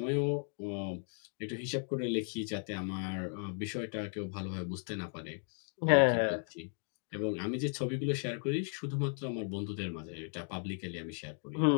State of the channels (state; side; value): silent; right; 54 dB below the other